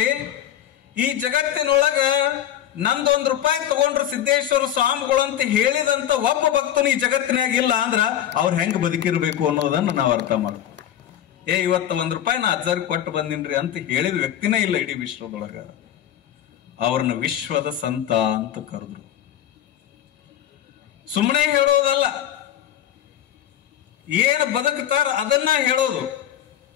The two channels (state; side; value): quieter; right; 11.0 dB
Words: ಈ ಜಗತ್ತಿನೊಳಗ ನಂದೊಂದು ರೂಪಾಯಿ ತಗೊಂಡ್ರು ಸಿದ್ದೇಶ್ವರ ಸ್ವಾಮಿಗಳು ಅಂತ ಹೇಳಿದಂತ ಒಬ್ಬ ಭಕ್ತನು ಈ ಜಗತ್ತಿನಾಗ ಇಲ್ಲ ಅಂದ್ರ ಅವ್ರು ಹೆಂಗ್ ಬದುಕಿರ್ಬೇಕು ಅನ್ನೋದನ್ನ ನಾವು ಅರ್ಥ ಮಾಡ್ತೀವಿ. ಇವತ್ತು ₹1 ನಾ ಅಜ್ಜಾರಿಗೆ ಕೊಟ್ಟು ಬಂದಿನ್ರಿ ಅಂತ ಹೇಳಿದ ವ್ಯಕ್ತಿನೇ ಇಲ್ಲ ಇಡೀ ವಿಶ್ವದೊಳಗ. ಅವ್ರನ್ನ ವಿಶ್ವದ ಸಂತ ಅಂತ ಕರೆದ್ರು. ಸುಮ್ಮನೆ ಹೇಳೋದಲ್ಲ, ಏನು ಬದುಕ್ತಾರ ಅದನ್ನ ಹೇಳೋದು.